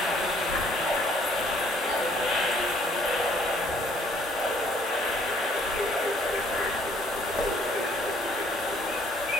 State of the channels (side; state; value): both; normal; correlation 0.62